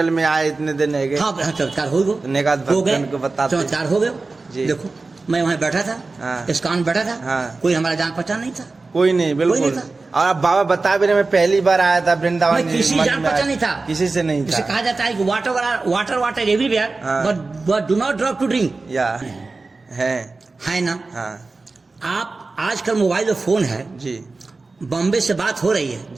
में आए इतने दिन है हाँ चमत्कार हो गए, भक्त को बताते चमत्कार हो गए जी। देखो मैं वहाँ बैठा था, हाँ। इस्कॉन बैठा था, हाँ। कोई हमारा जान पहचान नहीं था, कोई नहीं, बिल्कुल नहीं था। और अब बाबा बता भी रहे मैं पहली बार आया था वृंदावन, किसी जान पहचान नहीं था, किसी से नहीं जिसे था। कहा जाता है कि वाटर वाटर एवरीवेयर हाँ। But do not drop to drink या है ना। हाँ आप आजकल मोबाइल में फोन है जी बॉम्बे से बात हो रही है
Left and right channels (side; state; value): left; quieter; 3.7 dB